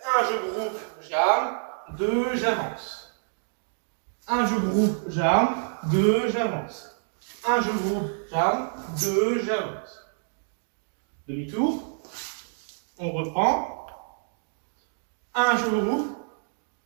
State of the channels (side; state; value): left; silent; digital silence